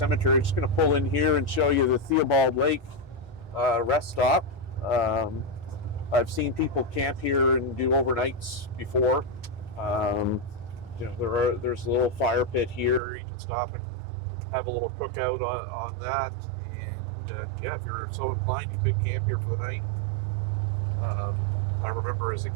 I'm just going to pull in here and show you the Theobald Lake rest stop. I've seen people camp here and do overnights before, You know, there's a little fire pit here. You can stop and have a little cookout on that. And yeah, if you're so inclined, you could camp here for the night. I remember as a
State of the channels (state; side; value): drops out; left; at 13.0 s